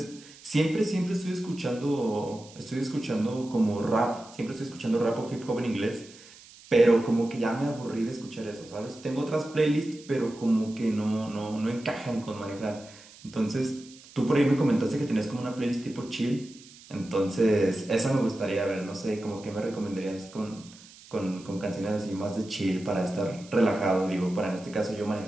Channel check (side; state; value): right; noise; hiss, 21 dB below the sound